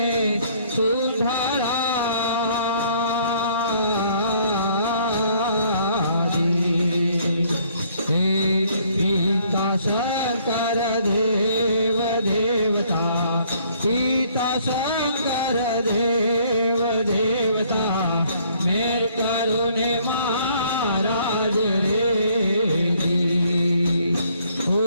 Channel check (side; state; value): both; inverted; correlation -0.63